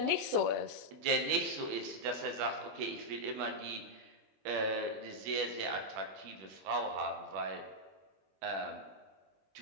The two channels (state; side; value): late; left; 21 ms